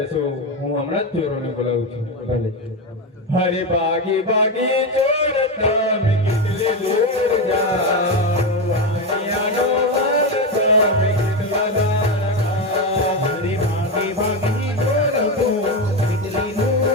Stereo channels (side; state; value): both; normal; correlation 0.13